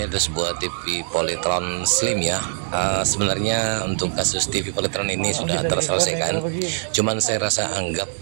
ada sebuah TV Polytron Slim ya. Sebenarnya untuk kasus TV Polytron ini sudah terselesaikan. Cuman saya rasa anggap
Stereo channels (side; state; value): left; silent; digital silence